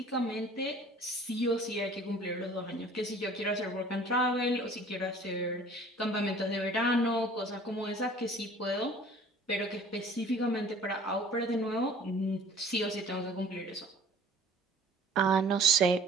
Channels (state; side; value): normal; both; correlation 0.49